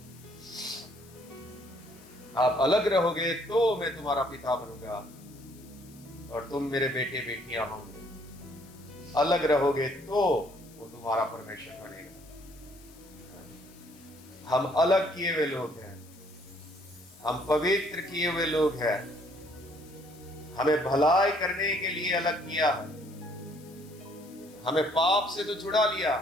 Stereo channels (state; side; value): noise; left; hiss, 24 dB below the sound